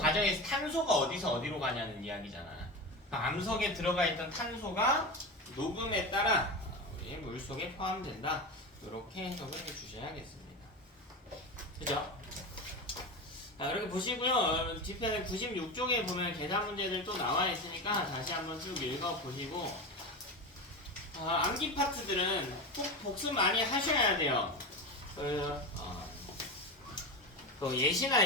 탄소가 어디서 어디로 가냐는 이야기잖아. 암석에 들어가 있던 탄소가 녹음에 따라 우리 물속에 포함된다. 이렇게 해석을 해주셔야겠습니다. 그죠? 이렇게 보시고요. 뒤편에 96쪽에 보면 계산 문제들 또 나와 있으니까 다시 한번 쭉 읽어보시고 암기 파트들은 꼭 복습 많이 하셔야 돼요. 예시나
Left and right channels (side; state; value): both; normal; correlation 0.23